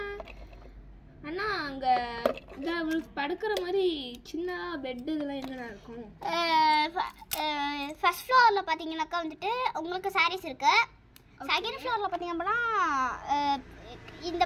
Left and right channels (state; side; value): identical; both; correlation 1.00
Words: அண்ணா அங்கே படுக்கிற மாதிரி சின்ன பெட்டு இதெல்லாம் என்னென்ன இருக்கும்? ஃபர்ஸ்ட் ஃப்ளோரில் பார்த்தீங்கன்னாக்கா வந்துட்டு உங்களுக்கு சாரீஸ் இருக்கு. செகண்ட் ஃப்ளோரில் பார்த்தீங்க அப்படின்னா இந்த